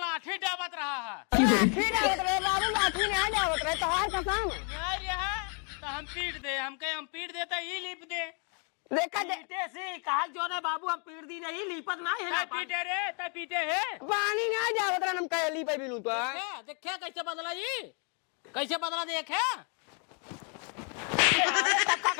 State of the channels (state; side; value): quieter; right; 38.5 dB